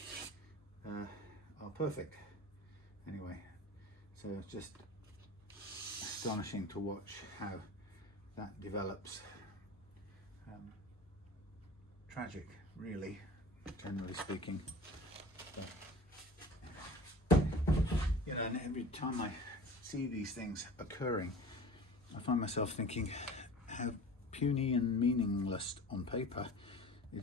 are perfect. Anyway, so it's just astonishing to watch how that develops. Tragic, really, generally speaking. But, you know, and every time I see these things occurring, I find myself thinking how puny and meaningless on paper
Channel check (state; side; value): normal; both; correlation 0.39